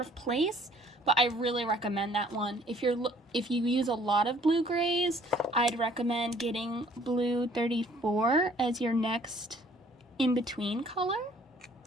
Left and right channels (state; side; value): normal; both; correlation 0.58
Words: place, but I really recommend that one. If you use a lot of blue grays, I'd recommend getting blue 34 as your next in-between color.